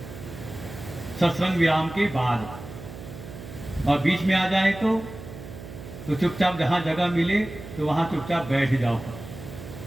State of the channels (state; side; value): noise; right; hum, 13 dB below the sound